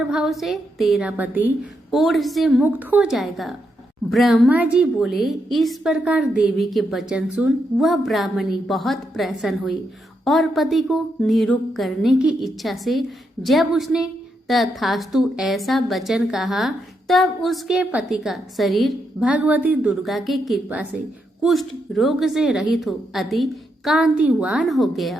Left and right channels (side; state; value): both; normal; correlation 0.81